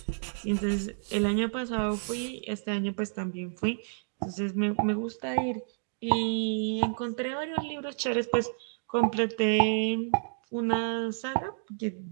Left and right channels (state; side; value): silent; left; digital silence